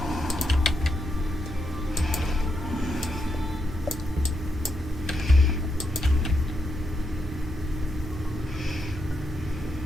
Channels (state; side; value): normal; both; correlation 0.82